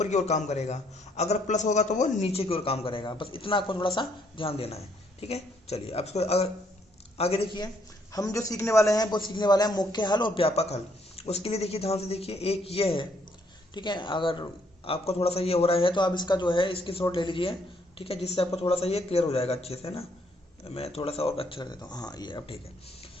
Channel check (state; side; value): normal; both; correlation 0.69